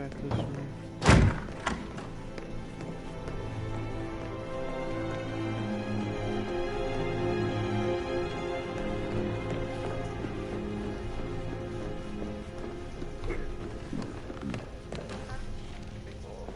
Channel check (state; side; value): identical; both; correlation 1.00